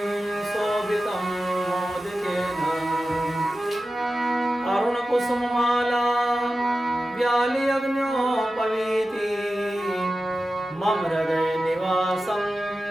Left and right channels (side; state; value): both; normal; correlation 0.93